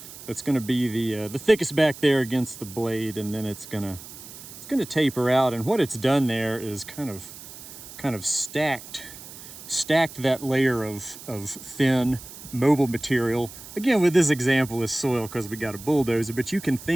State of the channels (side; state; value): right; noise; hiss, 15 dB below the sound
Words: that's going to be the thickest back there against the blade, and then it's going to taper out. And what it's done there is kind of stacked that layer of thin mobile material. Again, with this example is soil because we got a bulldozer, but you can